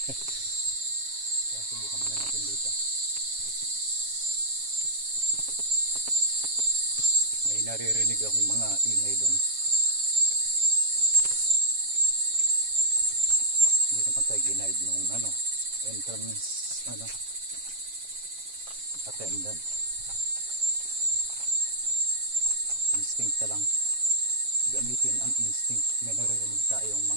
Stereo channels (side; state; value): left; late; 7.3 ms